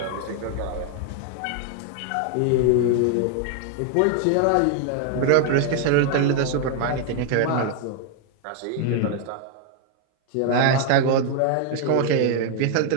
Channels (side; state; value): both; different; correlation 0.00